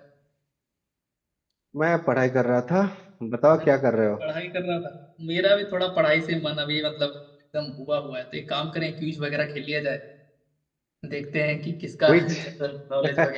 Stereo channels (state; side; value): identical; both; correlation 1.00